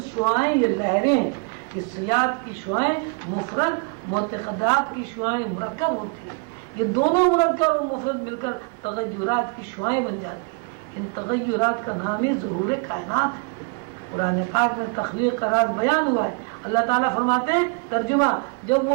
شعاعیں، یہ لہریں ہیں. حسیات کی شعاعیں مفرد، معتقدات کی شعاعیں مرکب ہوتی ہیں. یہ دونوں مرکب اور مفرد مل کر تغیرات کی شعاعیں بن جاتی ہیں. ان تغیرات کا نام ہی ظہور کائنات ہے. قرآن پاک میں تخلیق کا راز بیان ہوا ہے. اللہ تعالیٰ فرماتے ہیں ترجمہ، جب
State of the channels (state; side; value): quieter; left; 34.9 dB